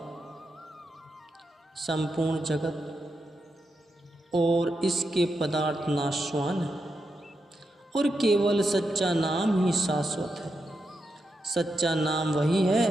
संपूर्ण जगत और इसके पदार्थ नाशवान है और केवल सच्चा नाम ही शाश्वत है। सच्चा नाम वही है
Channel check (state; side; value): normal; both; correlation 0.86